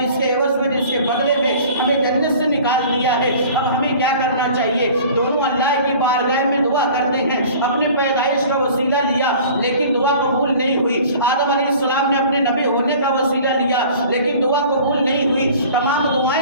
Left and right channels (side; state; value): both; inverted; correlation -0.45